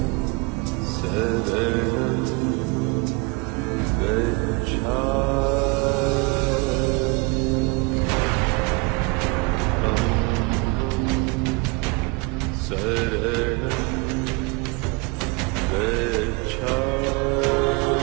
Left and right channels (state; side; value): quieter; left; 28.9 dB